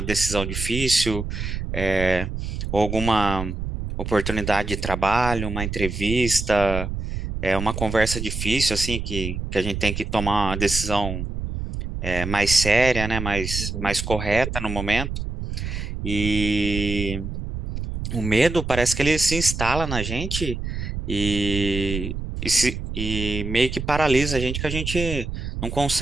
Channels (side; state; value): right; noise; rumble, 5 dB below the sound